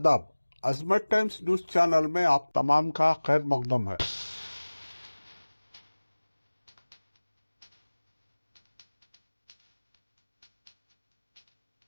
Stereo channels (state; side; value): inverted; both; correlation -1.00